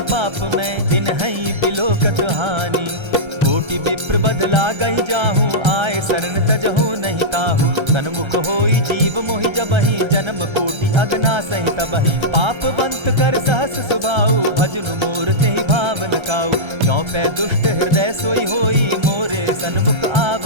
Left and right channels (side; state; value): left; late; 1.3 ms